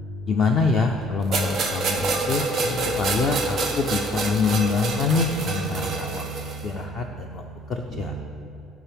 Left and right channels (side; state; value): both; normal; correlation 0.58